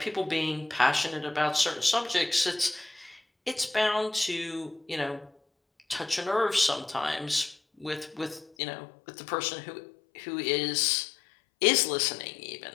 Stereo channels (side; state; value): right; drops out; at 8.5 s